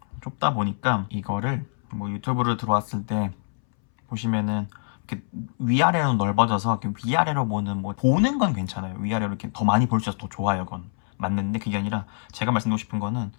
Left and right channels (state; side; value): silent; right; 62 dB below the other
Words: 좁다 보니까 이거를 뭐 유튜브를 들어왔을 때 보시면은 이렇게 위아래로 넓어져서 이렇게 위아래로 보는 건 괜찮아요. 위아래로 이렇게 더 많이 볼 수 있어서 더 좋아요, 그건 맞는데 그게 아니라 제가 말씀드리고 싶은 거는